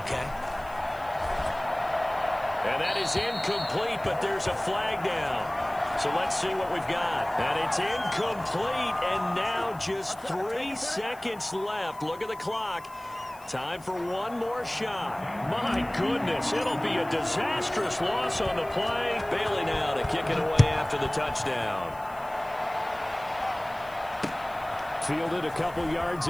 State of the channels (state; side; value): noise; left; hiss, 24 dB below the sound